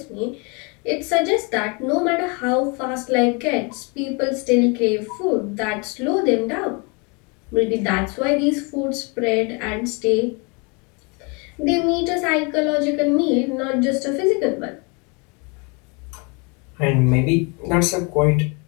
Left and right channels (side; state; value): right; quieter; 31.5 dB